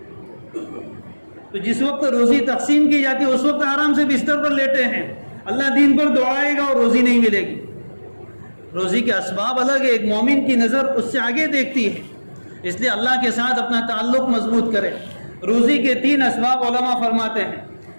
تو تو جس وقت روزی تقسیم کی جاتی ہے اس وقت آرام سے بستر پر لیٹے ہیں، اللہ دین پر دوڑائے گا اور روزی نہیں ملے گی۔ روزی کے اسباب الگ ہے، ایک مومن کی نظر اس سے آگے دیکھتی ہے، اس لیے اللہ کے ساتھ اپنا تعلق مضبوط کرے۔ روزی کے 3 اسباب علماء فرماتے ہیں۔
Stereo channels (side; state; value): both; inverted; correlation -1.00